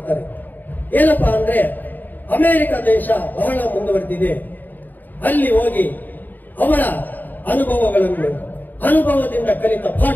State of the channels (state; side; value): late; right; 0.087 ms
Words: ಏನಪ್ಪಾ ಅಂದ್ರೆ, ಅಮೆರಿಕ ದೇಶ ಬಹಳ ಮುಂದುವರೆದಿದೆ, ಅಲ್ಲಿ ಹೋಗಿ ಅವರ ಅನುಭವದಿಂದ ಕಲಿತ